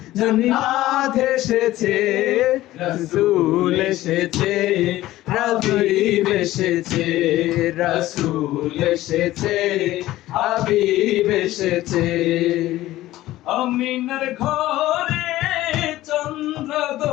জান্নাত এসেছে, রাসূল এসেছে, হাবিব এসেছে, রাসূল এসেছে, হাবিব এসেছে। আমিনার ঘরে চন্দ্র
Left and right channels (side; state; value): right; quieter; 15.8 dB